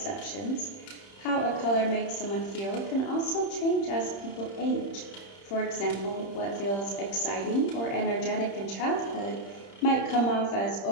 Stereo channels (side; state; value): right; late; 30 ms